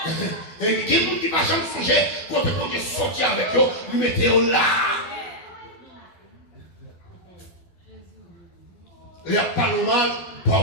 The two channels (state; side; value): late; right; 12 ms